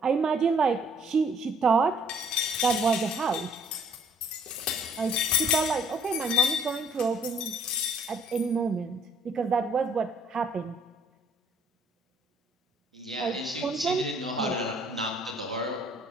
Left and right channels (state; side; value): normal; both; correlation 0.61